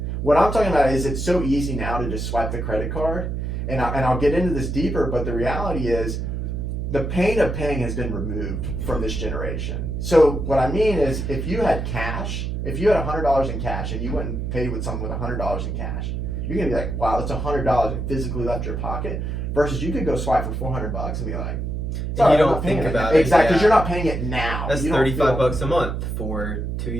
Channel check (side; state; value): right; noise; hum, 3 dB below the sound